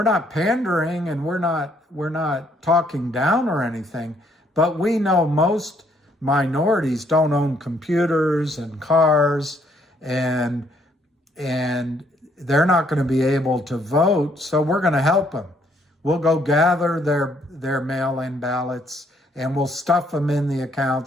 not pandering and we're not talking down or anything, but we know most minorities don't own computers and cars, and they're not going to be able to vote. So we're going to help them. We'll go gather their mail-in ballots and we'll stuff them in the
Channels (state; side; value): normal; both; correlation 0.68